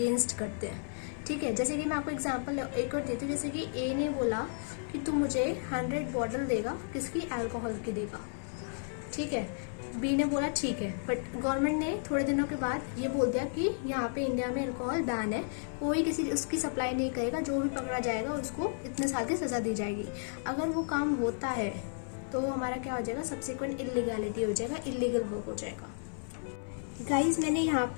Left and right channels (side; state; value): right; silent; 56 dB below the other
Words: करते हैं। ठीक है। जैसे कि मैं आपको एग्जांपल एक और देती हूँ। जैसे कि ए ने बोला कि तू मुझे 100 बॉटल देगा, किसकी? अल्कोहल की देगा। ठीक है। बी ने बोला ठीक है, बट गवर्नमेंट ने थोड़े दिनों के बाद ये बोल दिया कि यहाँ पे इंडिया में अल्कोहल बैन है, कोई किसी उसकी सप्लाई नहीं करेगा, जो भी पकड़ा जाएगा उसको इतने साल की सजा दी जाएगी। अगर वो काम होता है तो हमारा क्या हो जाएगा, सब्सिक्वेंट इलीगैलिटी हो जाएगा, इलीगल वर्क हो जाएगा। गाइज मैंने यहाँ